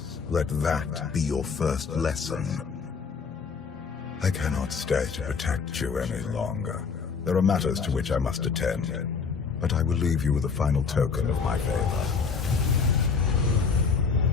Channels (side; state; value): right; quieter; 5.5 dB